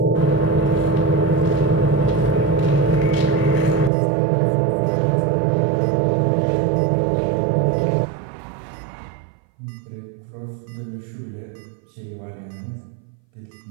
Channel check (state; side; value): drops out; left; at 3.9 s